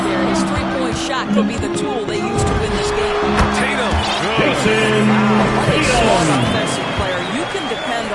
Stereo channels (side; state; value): both; identical; correlation 1.00